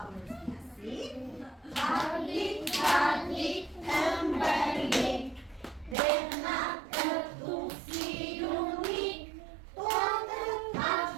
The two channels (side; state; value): left; drops out; at 6.0 s